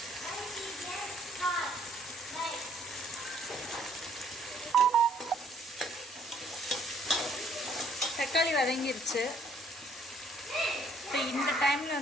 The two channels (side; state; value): both; normal; correlation 0.63